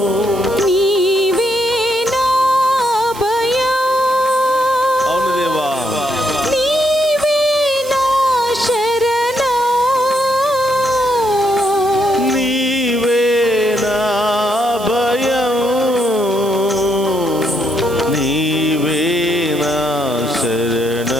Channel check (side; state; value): right; noise; hiss, 16 dB below the sound